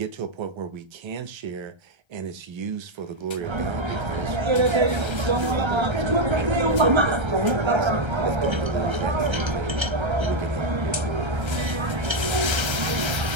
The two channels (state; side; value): late; left; 1.3 ms